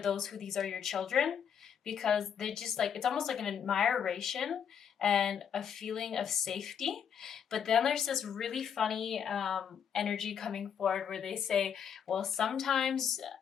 who these are your children, because they just like, it's almost like an admiration and a feeling of safety. But then there's this really funny energy coming forward where they say, well, sometimes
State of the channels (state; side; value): quieter; right; 7.9 dB